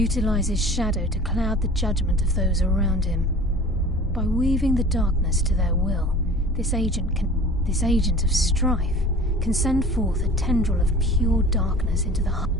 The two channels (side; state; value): both; normal; correlation 0.42